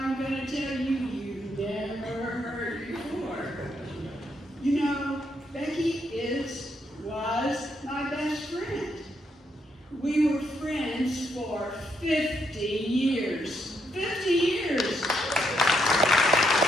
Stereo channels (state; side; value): normal; both; correlation 0.77